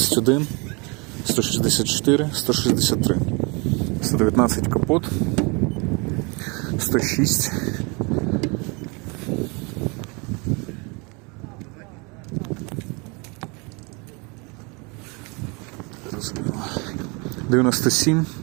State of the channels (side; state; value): left; quieter; 30.1 dB